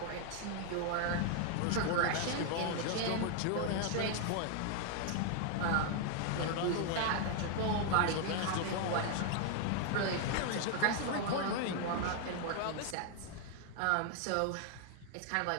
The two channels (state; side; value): different; both; correlation 0.00